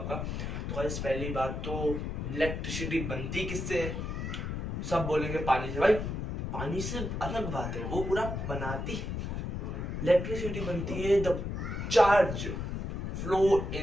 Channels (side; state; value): left; noise; rumble, 4 dB below the sound